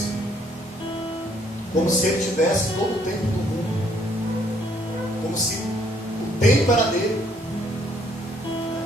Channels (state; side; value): normal; both; correlation 0.66